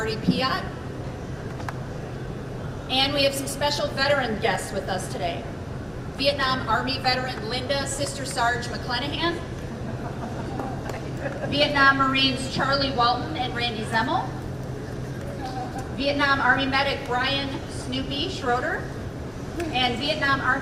Piat, and we have some special veteran guests with us today. Vietnam Army veteran Linda Sister Sarge McClenahan, Vietnam Marines Charlie Walton and Randy Zemmel, Vietnam Army medic Brian Snoopy Schroeder, and Vietnam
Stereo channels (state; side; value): identical; both; correlation 1.00